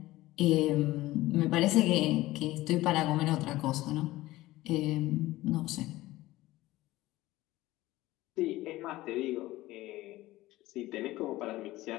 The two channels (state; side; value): quieter; right; 17.5 dB